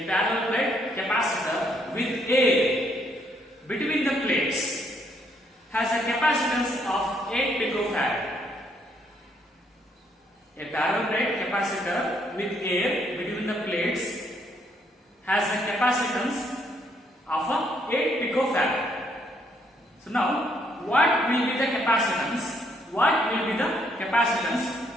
parallel plate capacitor with air between the plates has a capacitance of 8 picofarad. A parallel plate capacitor with air between the plates has a capacitance of 8 picofarad. So now, what will be the capacitance? What will be the capacitance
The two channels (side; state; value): both; normal; correlation 0.71